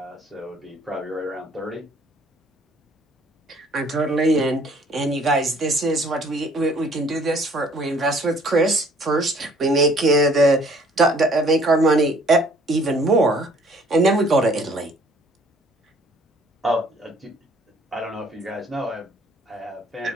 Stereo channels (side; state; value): both; normal; correlation 0.58